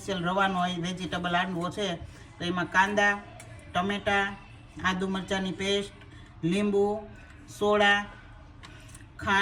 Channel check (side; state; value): both; identical; correlation 1.00